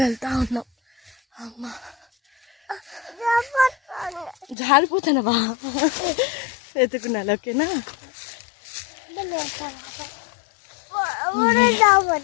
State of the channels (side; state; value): right; drops out; at 4.5 s